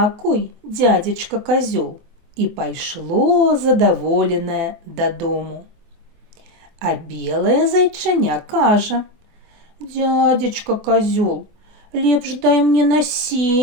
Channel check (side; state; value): left; late; 24 ms